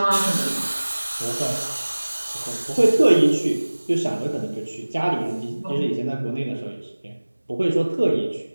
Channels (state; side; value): inverted; both; correlation -1.00